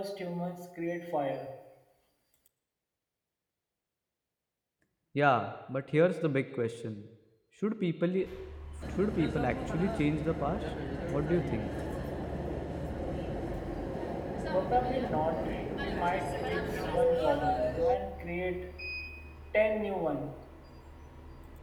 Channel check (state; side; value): identical; both; correlation 1.00